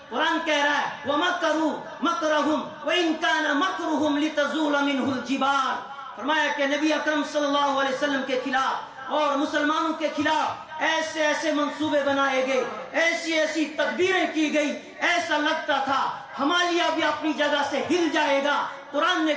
قرآن کہہ رہا ہے وَمَكَرُوا مَكْرَهُمْ وَإِنْ كَانَ مَكْرُهُمْ لِتَزُولَ مِنْهُ الْجِبَالُ۔ فرمایا کہ نبی اکرم صلی اللہ علیہ وسلم کے خلاف اور مسلمانوں کے خلاف ایسے ایسے منصوبے بنائے گئے، ایسی ایسی تدبیریں کی گئی، ایسا لگتا تھا ہمالیہ بھی اپنی جگہ سے ہل جائے گا۔ قرآن نے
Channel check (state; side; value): identical; both; correlation 1.00